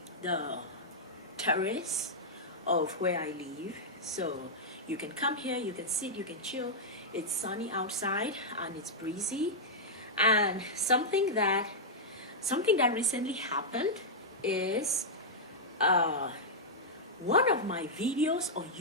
terrace of where I live, so you can come here, you can sit, you can chill. It's sunny outside and it's breezy. And something that recently happened is one of my videos on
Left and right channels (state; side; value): normal; both; correlation -0.07